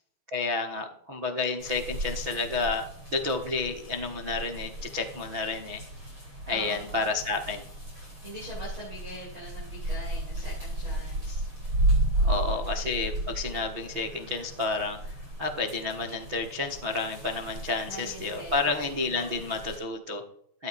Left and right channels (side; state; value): left; late; 6.1 ms